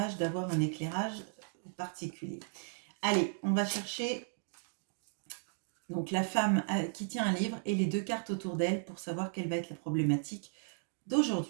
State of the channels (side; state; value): left; silent; digital silence